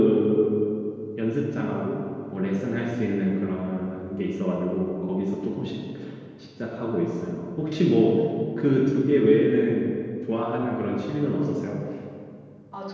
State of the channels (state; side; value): identical; both; correlation 1.00